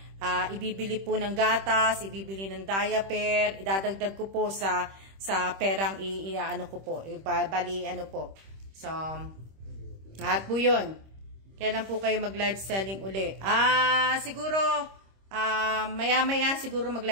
ibibili po ng gatas, ibibili ng diaper, idadagdag ko po sa perang iaano ko po. Bali, ano po. So, lahat po yun. Kailan po kayo mag-live selling uli? Siguro, maya-maya siguro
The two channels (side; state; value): left; late; 26 ms